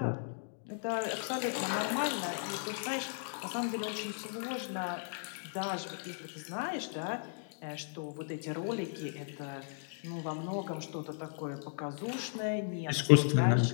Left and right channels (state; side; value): silent; right; digital silence